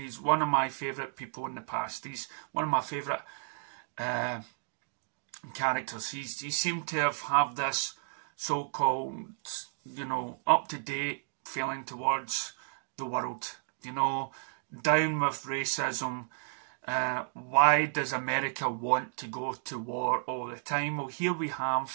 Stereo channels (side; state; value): left; silent; digital silence